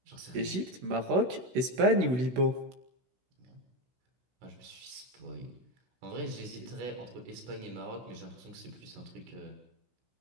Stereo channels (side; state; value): left; late; 16 ms